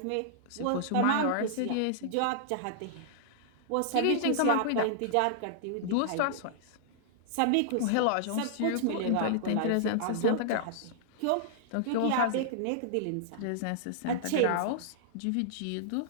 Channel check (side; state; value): both; different; correlation -0.01